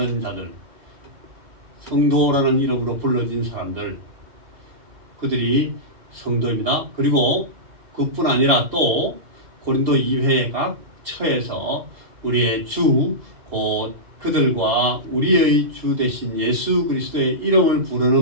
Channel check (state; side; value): late; left; 2.8 ms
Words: 자들, 성도라는 이름으로 불러진 사람들, 그들이 성도입니다. 그리고 그뿐 아니라 또 고린도 2회 각 처에서 우리의 주 곧 그들과 우리의 주 되신 예수 그리스도의 이름을 부르는